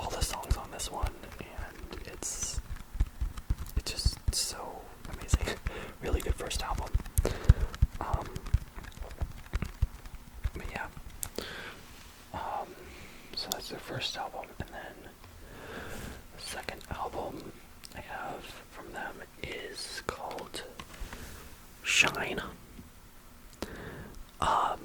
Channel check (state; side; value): identical; both; correlation 1.00